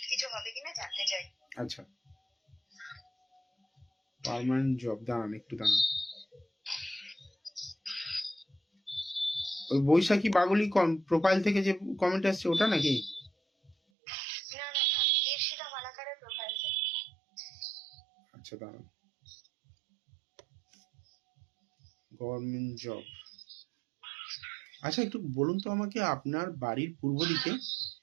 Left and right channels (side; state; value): left; drops out; at 13.8 s